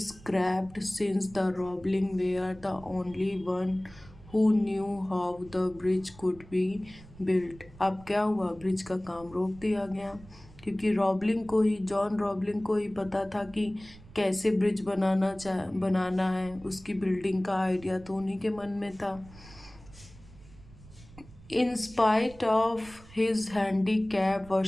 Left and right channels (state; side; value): noise; right; rumble, 21 dB below the sound